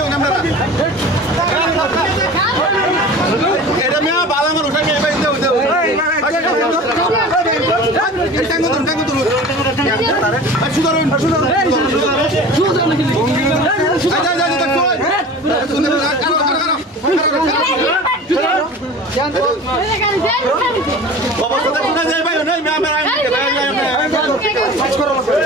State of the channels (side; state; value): both; normal; correlation 0.38